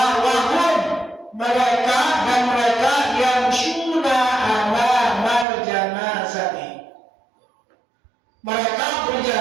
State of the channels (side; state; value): left; drops out; at 5.5 s